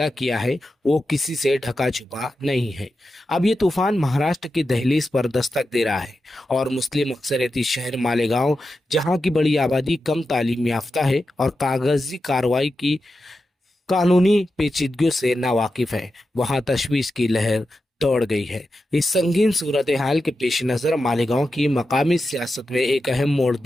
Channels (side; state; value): both; normal; correlation 0.90